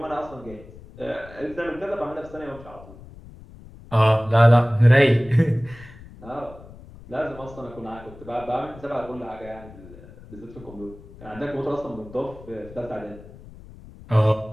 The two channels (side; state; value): left; noise; rumble, 19 dB below the sound